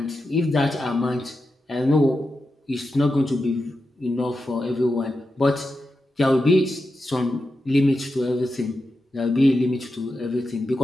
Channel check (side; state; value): both; normal; correlation 0.89